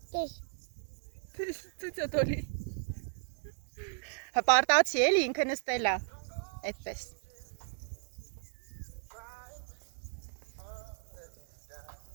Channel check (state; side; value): silent; left; 54 dB below the other